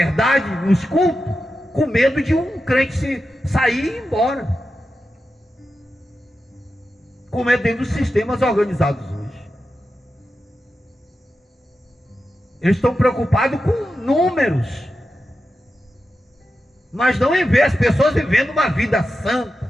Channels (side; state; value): both; normal; correlation 0.90